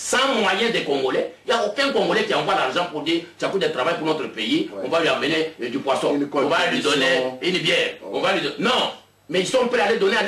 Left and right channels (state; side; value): identical; both; correlation 1.00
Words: moyens des Congolais. Il n'y a aucun Congolais qui envoie l'argent pour dire Tchakoudia travaille pour notre pays. On va lui amener du poisson. On va lui donner une bière. On va lui donner... Non. Mais ils sont prêts à les donner à